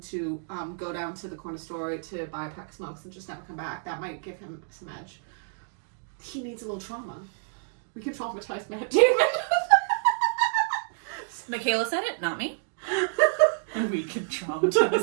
to go down to the corner store to buy a pack of smokes and just never come back. That might give him some edge. He needs a little trauma. We can traumatize Matt Damon. Michaela said it, not me. And we can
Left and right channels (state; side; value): silent; left; digital silence